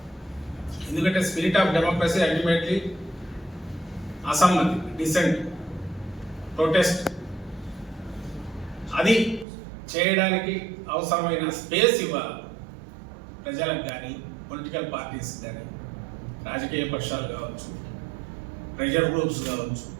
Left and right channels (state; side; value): drops out; left; at 9.5 s